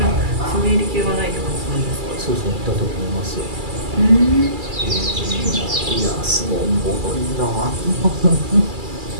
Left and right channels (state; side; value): late; left; 2.3 ms